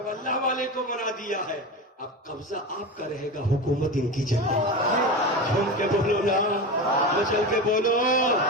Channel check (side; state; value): both; normal; correlation 0.24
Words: اللہ والے کو بنا دیا ہے, اب قبضہ آپ کا رہے گا, حکومت ان کی جگہ. جھوم کے بولو نا, مچل کے بولو,